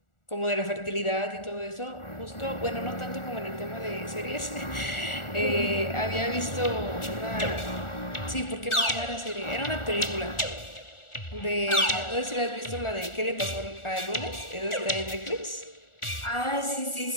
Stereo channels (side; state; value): right; late; 1.4 ms